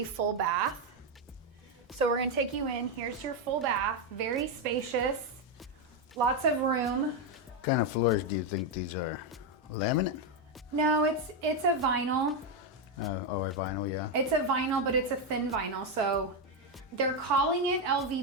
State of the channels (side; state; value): both; normal; correlation 0.05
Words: full bath. So we're gonna take you in. Here's your full bath, very spacious, lots of room. What kind of floors do you think these are? Laminate? No, it's a vinyl. A vinyl, yeah. It's a vinyl, but it's a thin vinyl. So they're calling it